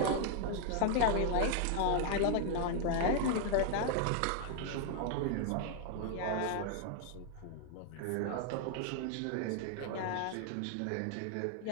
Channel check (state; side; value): different; both; correlation 0.00